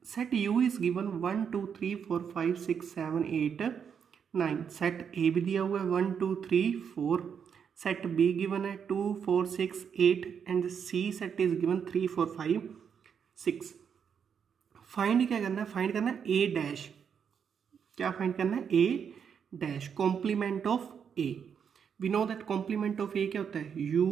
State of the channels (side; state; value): left; quieter; 7.3 dB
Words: set U is given 1, 2, 3, 4, 5, 6, 7, 8, 9. Set A भी दिया हुआ है 1, 2, 3, 4. Set B given है 2, 4, 6, 8 and C set is given 3, 4, 5, 6. Find क्या करना है? फाइंड करना है A डैश. क्या फाइंड करना है? A dash complement of A. We know that complement of A क्या होता है? u